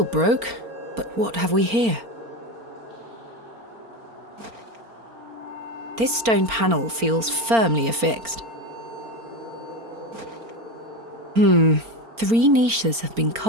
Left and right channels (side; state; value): left; late; 4.4 ms